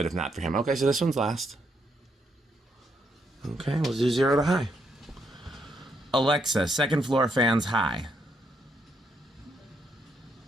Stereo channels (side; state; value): both; normal; correlation 0.76